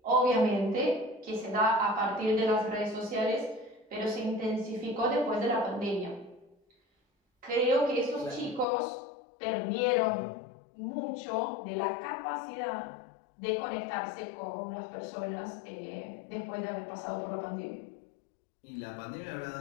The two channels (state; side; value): drops out; right; at 8.7 s